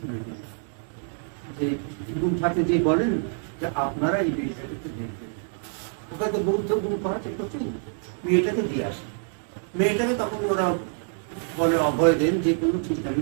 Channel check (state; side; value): silent; left; 61 dB below the other